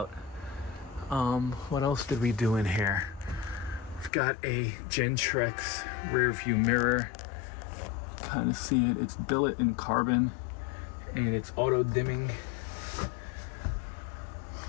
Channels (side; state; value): right; drops out; at 4.1 s